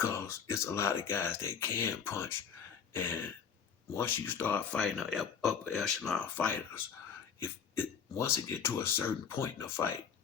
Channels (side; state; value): right; quieter; 7.1 dB